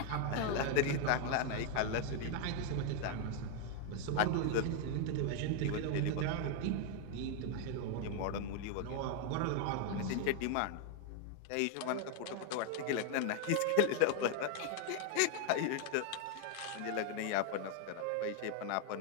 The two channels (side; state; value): both; different; correlation 0.00